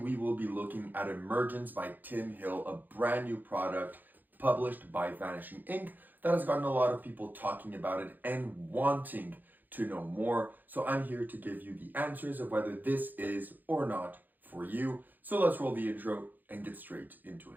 will be looking at Emergence by Tim Hill, a brand new product published by Vanishing Ink that has gotten a lot of people talking about it and wanting to know more. So I'm here to give you the answers of whether this is or not for you. So let's roll the intro and get straight into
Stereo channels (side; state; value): left; late; 0.086 ms